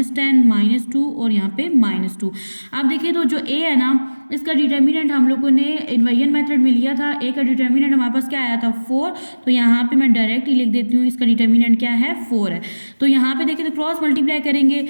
-2 और यहाँ पे -2। अब देखिए तो जो A है ना इसका डिटर्मिनेंट हम लोगों ने इन्वर्जन मेथड में लिया था। A का डिटर्मिनेंट हमारे पास क्या आया था 4। तो यहाँ पे मैं डायरेक्ट ही लिख देती हूँ इसका डिटर्मिनेंट क्या है 4 है। तो यहाँ पे देखिए तो क्रॉस मल्टीप्लाई करेंगे,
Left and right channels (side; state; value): both; inverted; correlation -1.00